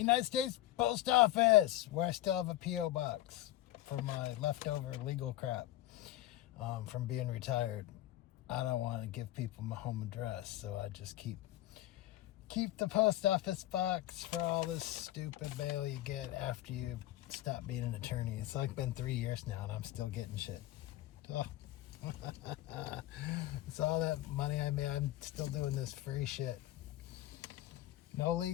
States Post Office, where I still have a P.O. box for my leftover legal crap from being retired. I don't want to give people my home address, so I just keep the post office box for all this stupid mail you get after you stop being an attorney. It's like been 3 years now, and I'm still getting shit. Oh. It's all that money I made. I'm still doing this free shit. No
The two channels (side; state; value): right; quieter; 15.1 dB